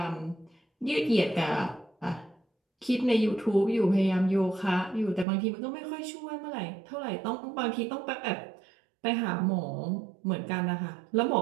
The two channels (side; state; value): left; drops out; at 5.2 s